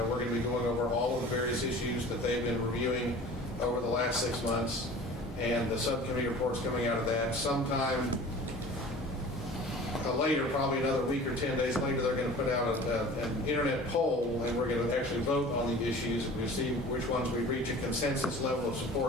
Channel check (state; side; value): normal; both; correlation 0.42